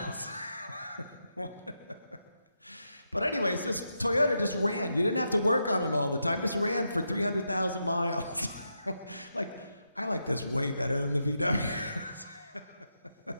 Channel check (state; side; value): inverted; both; correlation -0.85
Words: But anyways, this Toyota just ran. You didn't have to work on it all the time. Just ran for 300,000 miles. I like this way better than the VW.